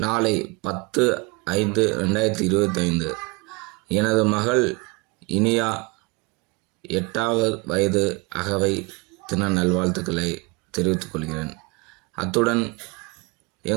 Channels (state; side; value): quieter; left; 26.8 dB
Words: 10/5/2025 எனது மகள் இனியா 8வது வயது அகவை தின நல்வாழ்த்துக்களை தெரிவித்துக் கொள்கிறேன். அத்துடன்